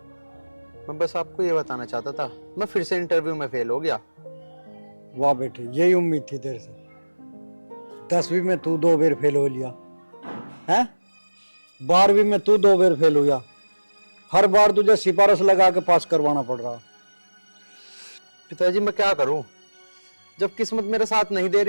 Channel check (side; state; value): both; inverted; correlation -1.00